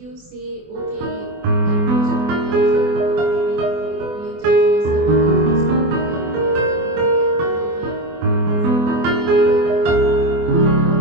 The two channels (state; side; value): late; left; 24 ms